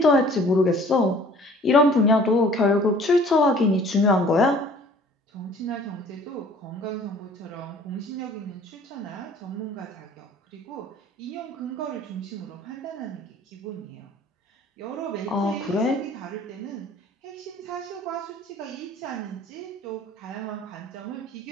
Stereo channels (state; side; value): normal; both; correlation 0.51